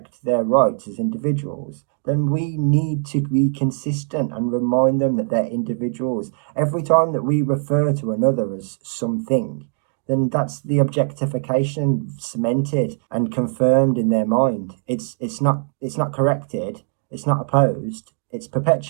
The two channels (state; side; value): silent; left; 55 dB below the other